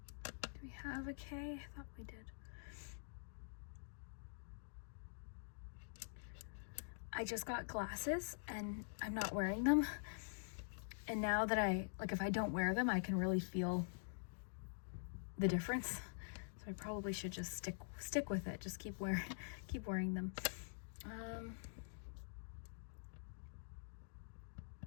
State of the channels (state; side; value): silent; right; digital silence